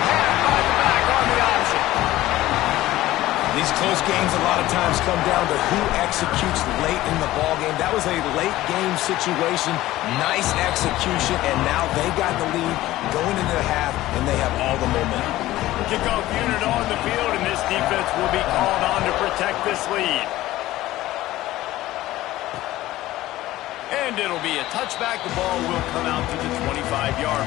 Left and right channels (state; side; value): quieter; right; 16.1 dB